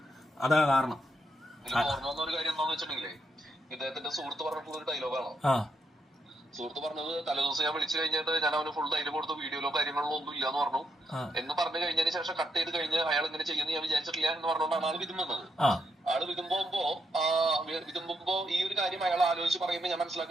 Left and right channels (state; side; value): normal; both; correlation 0.79